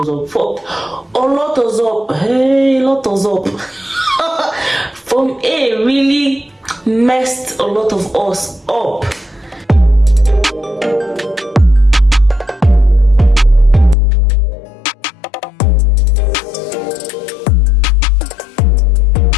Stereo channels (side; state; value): right; drops out; at 14.0 s